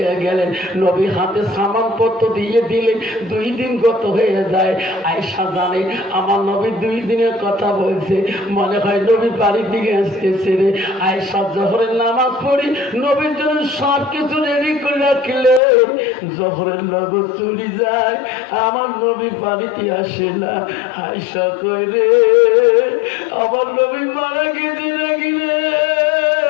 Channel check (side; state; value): right; drops out; at 15.6 s